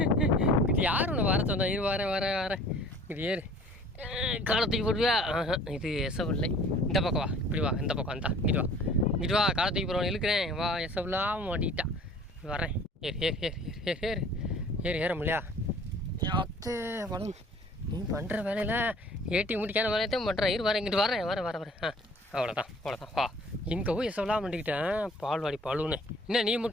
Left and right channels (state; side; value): normal; both; correlation 0.50